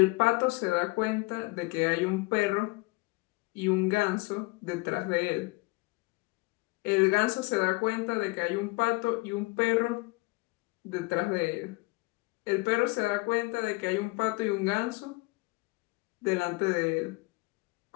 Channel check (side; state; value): right; quieter; 25.4 dB